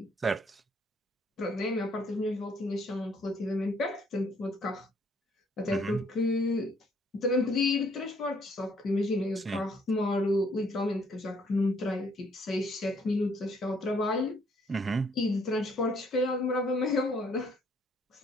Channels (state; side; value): normal; both; correlation 0.65